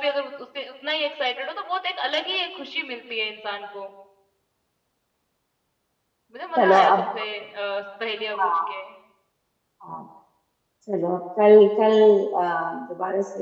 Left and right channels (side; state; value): both; identical; correlation 1.00